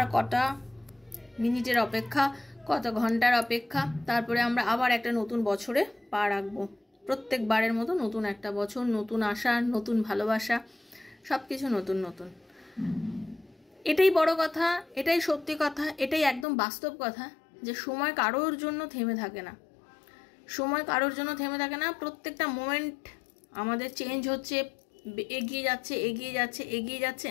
কটা মিনিটের অপেক্ষা, কত ঘন্টার অপেক্ষা, তারপরে আমরা আবার একটা নতুন বছরে পা রাখবো। প্রত্যেকবারের মতো নতুন একটা বছর, নতুন আশা, নতুন ভালোবাসা, সব কিছু নতুন নতুন। এটাই বড় কথা, এটাই সত্যি কথা, এটাই একদম বাস্তব কথা যে সময় কারোর জন্য থেমে থাকে না। সময় কারোর জন্য থেমে থাকে না। প্রত্যেকটা মোমেন্ট আমাদের চেঞ্জ হচ্ছে, এগিয়ে যাচ্ছে এগিয়ে যাচ্ছে এগিয়ে যাচ্ছে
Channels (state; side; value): drops out; right; at 16.4 s